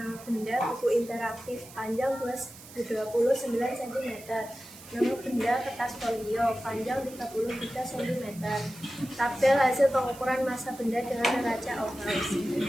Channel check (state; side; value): noise; right; hiss, 18 dB below the sound